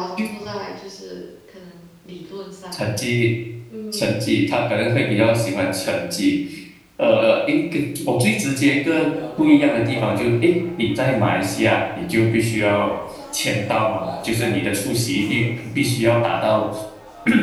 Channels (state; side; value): identical; both; correlation 1.00